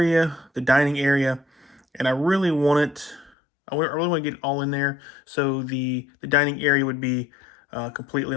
the dining area, and I really want it. I really want to get it all in there. So the dining area would be completely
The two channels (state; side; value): drops out; right; at 3.3 s